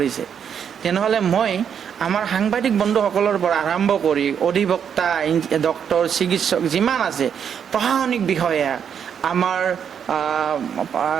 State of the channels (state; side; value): quieter; left; 7.9 dB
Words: তেনেহ'লে মই আমাৰ সাংবাদিক বন্ধুসকলৰ পৰা আৰম্ভ কৰি অধিবক্তা, ডক্টৰ, চিকিৎসক যিমান আছে, প্ৰশাসনিক বিষয়া, আমাৰ